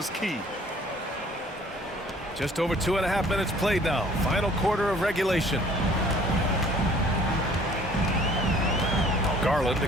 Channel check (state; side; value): normal; both; correlation 0.55